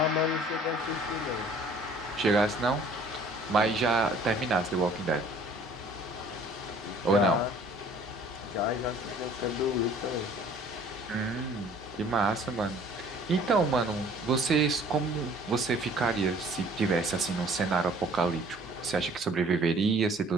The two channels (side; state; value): both; normal; correlation 0.53